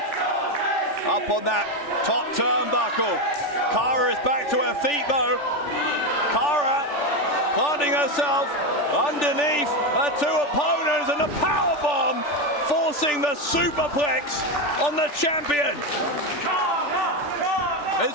up on that top turnbuckle. Cara is back to her feet though. Cara planting herself underneath her two opponents, and the powerbomb forcing the superplex on the champion.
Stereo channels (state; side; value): late; right; 3.4 ms